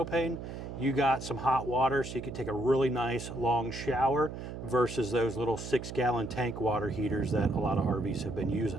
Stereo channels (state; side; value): noise; right; hum, 9 dB below the sound